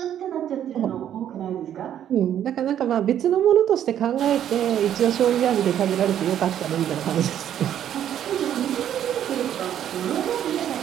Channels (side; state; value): left; quieter; 10.3 dB